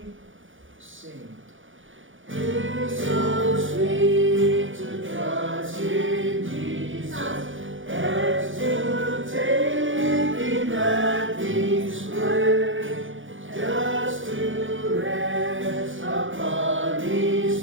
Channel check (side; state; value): left; late; 0.57 ms